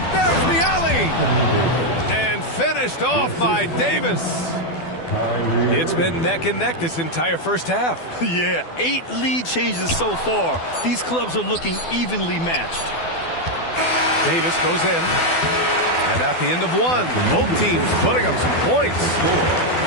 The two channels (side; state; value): right; late; 12 ms